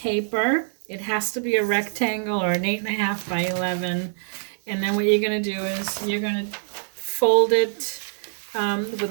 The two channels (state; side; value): silent; left; digital silence